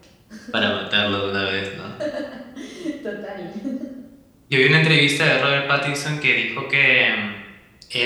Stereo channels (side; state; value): both; identical; correlation 1.00